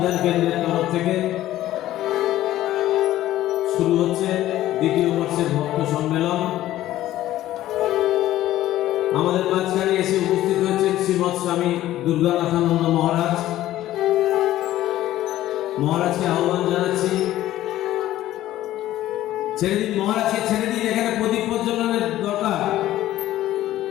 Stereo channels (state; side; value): quieter; right; 14.2 dB